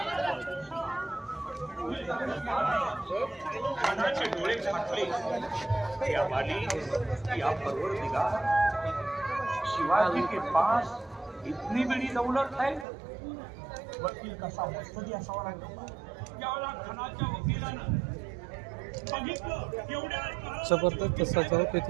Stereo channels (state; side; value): drops out; left; at 12.9 s